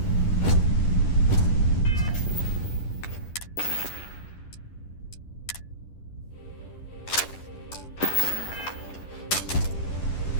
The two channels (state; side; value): late; right; 10 ms